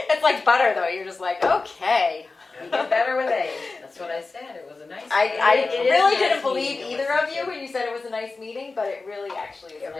like butter, though. You're just like, okay. You get better with age. That's what I said, it was a nice. I It is really a nice didn't believe meeting to either listen of you to. when you said it was a nice meeting, but it really actually is. It a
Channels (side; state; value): right; quieter; 3.9 dB